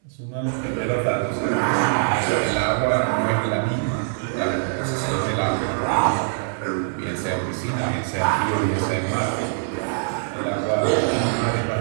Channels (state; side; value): silent; left; 60 dB below the other